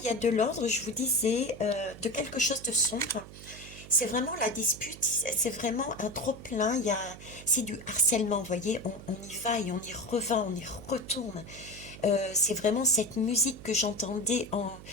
il y a de l'ordre, je vous disais, de quelque chose de sombre. C'est vraiment la dispute, c'est vraiment un trop-plein, c'est du harcèlement, vous voyez, on y va et on y revient, on y retourne. C'est vraiment cette musique que j'entendais,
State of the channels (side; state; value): right; noise; hum, 16 dB below the sound